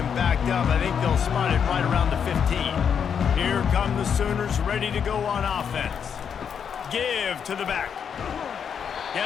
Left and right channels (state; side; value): quieter; right; 7.4 dB